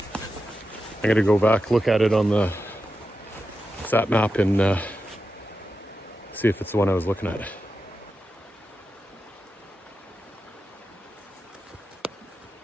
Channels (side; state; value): both; normal; correlation 0.90